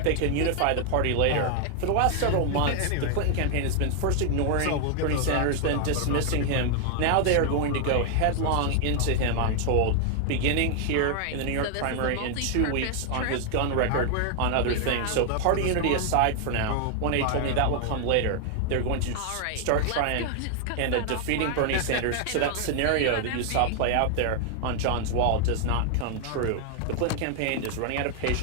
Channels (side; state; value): both; different; correlation 0.00